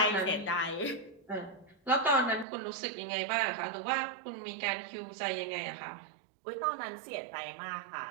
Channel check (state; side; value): drops out; left; at 2.5 s